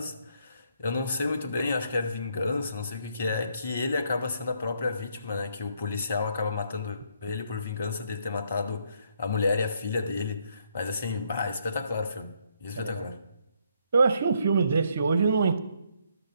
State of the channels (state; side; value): inverted; both; correlation -0.71